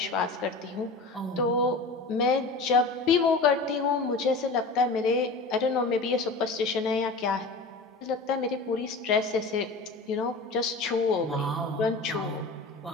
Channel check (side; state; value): right; quieter; 3.6 dB